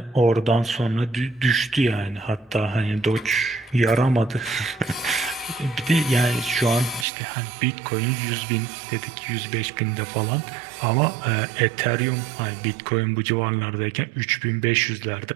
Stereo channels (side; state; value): left; drops out; at 7.1 s